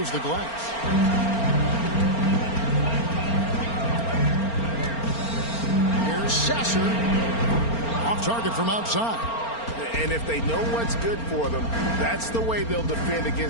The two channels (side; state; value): right; late; 4.4 ms